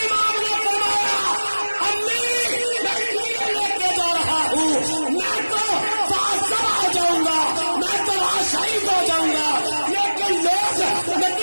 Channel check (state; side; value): inverted; both; correlation -1.00